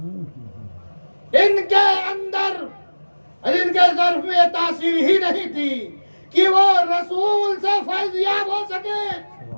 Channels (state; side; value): inverted; both; correlation -1.00